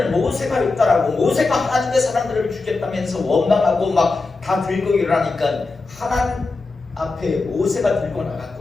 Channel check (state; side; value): quieter; right; 3.7 dB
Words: 모세가 했다라고, 모세가 하나님의 사람들을 죽였다면서 원망하고 막 다 들고 일어나니까 하나님 앞에 모세가 들고